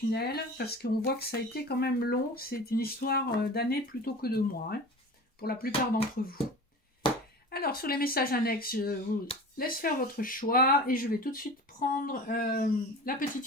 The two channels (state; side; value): normal; both; correlation 0.36